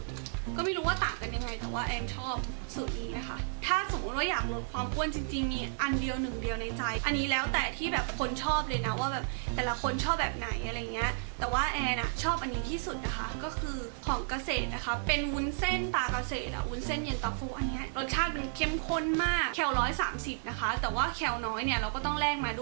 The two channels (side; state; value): left; silent; digital silence